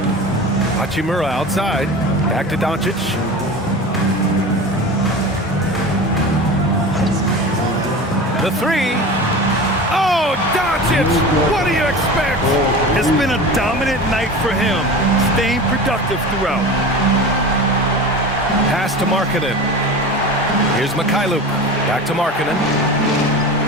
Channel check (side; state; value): both; normal; correlation 0.32